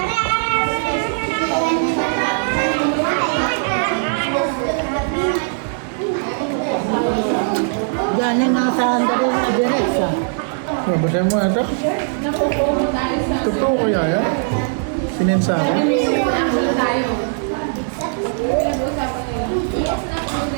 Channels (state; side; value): silent; left; 66 dB below the other